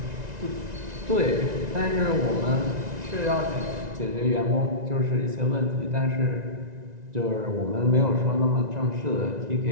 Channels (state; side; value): late; left; 1.9 ms